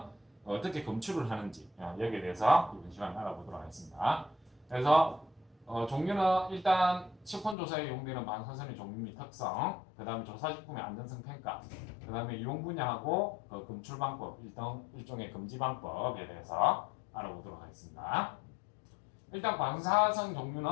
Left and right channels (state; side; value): drops out; right; at 7.6 s